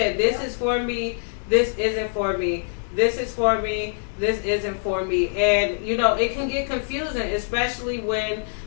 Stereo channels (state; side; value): silent; right; digital silence